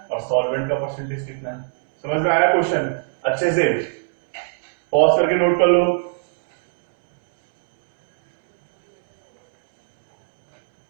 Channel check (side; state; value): left; silent; 66 dB below the other